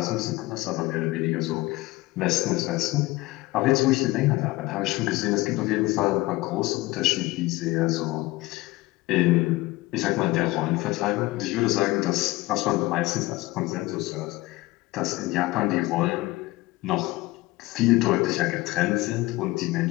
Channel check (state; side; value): quieter; right; 20.0 dB